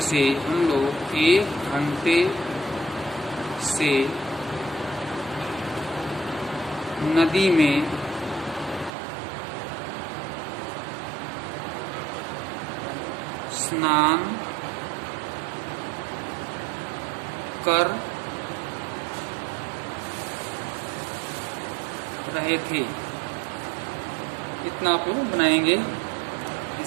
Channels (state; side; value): drops out; left; at 8.9 s